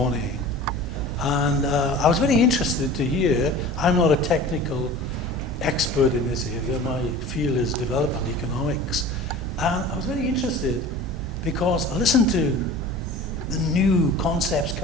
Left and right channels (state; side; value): normal; both; correlation 0.39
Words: And I was very interested to hear, I'm not a technical expert in this area, my field is development economics. And I was very interested because I listened to the new concepts